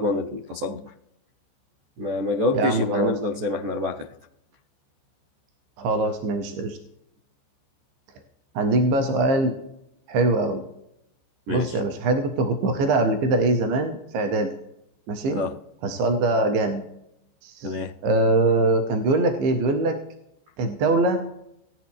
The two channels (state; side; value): late; left; 14 ms